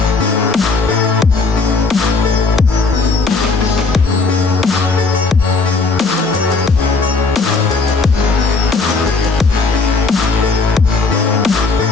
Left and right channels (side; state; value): right; quieter; 4.1 dB